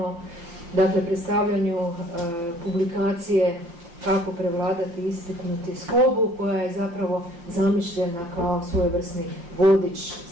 dakle, predstavljanju publikacije Kako prevladati ispitnu tjeskobu, koja je zapravo zamišljena kao svojevrsni vodič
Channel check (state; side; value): late; left; 5.8 ms